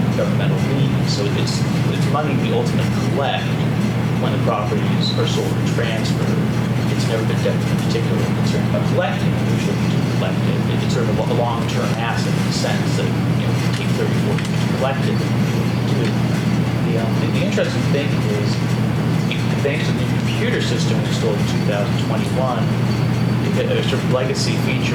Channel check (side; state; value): both; identical; correlation 1.00